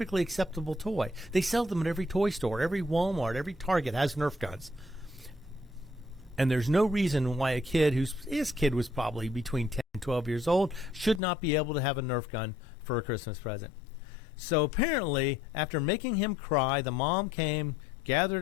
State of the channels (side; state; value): right; drops out; at 11.2 s